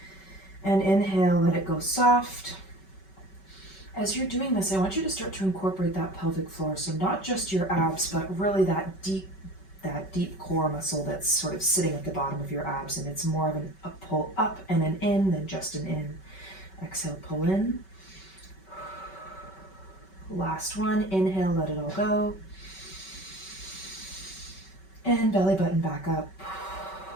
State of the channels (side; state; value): right; late; 5.2 ms